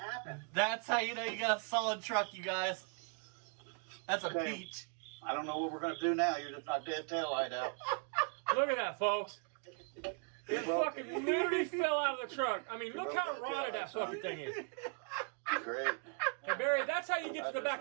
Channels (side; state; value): left; quieter; 38.1 dB